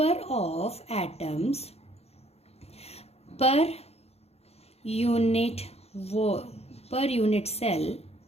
of atoms per unit cell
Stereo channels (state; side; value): late; right; 0.30 ms